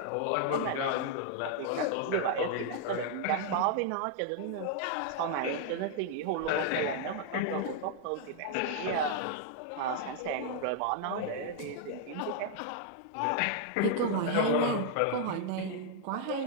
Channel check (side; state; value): both; different; correlation 0.00